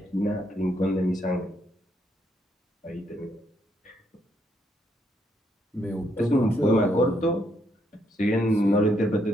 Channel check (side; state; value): both; normal; correlation 0.75